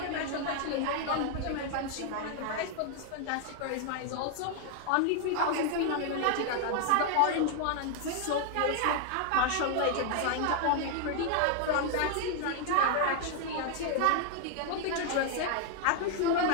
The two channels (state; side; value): different; both; correlation 0.00